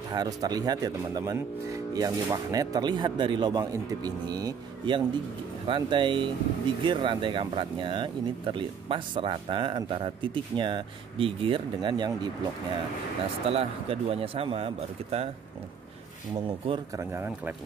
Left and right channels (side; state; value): left; quieter; 6.8 dB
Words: harus terlihat ya teman-teman. Yang di magnet terlihat dari lubang intip ini, yang di rantai di gear rantai kampratnya ini terlihat pas rata antara titiknya di gear dengan yang di bloknya. Nah, setelah keduanya sama, baru kita mengukur kerenggangan